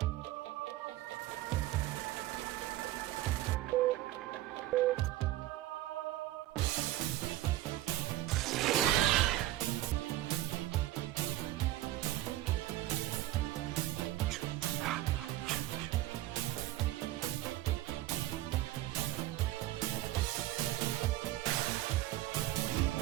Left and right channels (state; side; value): quieter; left; 15.4 dB